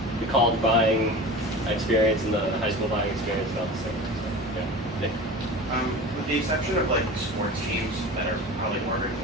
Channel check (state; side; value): normal; both; correlation 0.34